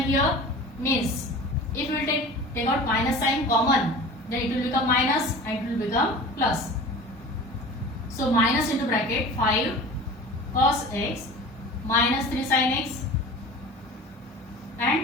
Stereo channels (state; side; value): normal; both; correlation 0.39